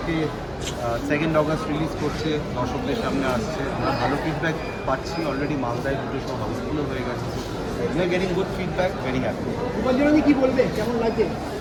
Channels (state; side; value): identical; both; correlation 1.00